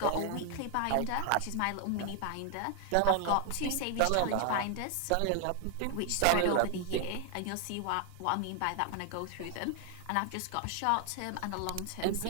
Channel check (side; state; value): both; different; correlation 0.00